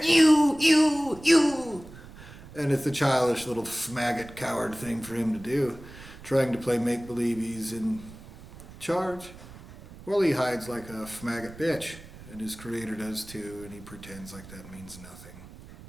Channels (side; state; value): right; noise; rumble, 17 dB below the sound